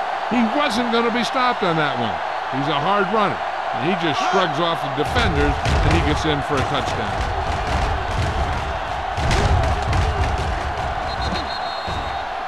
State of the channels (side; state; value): both; identical; correlation 1.00